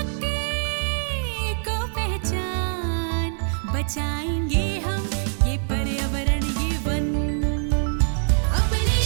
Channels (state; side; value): silent; left; digital silence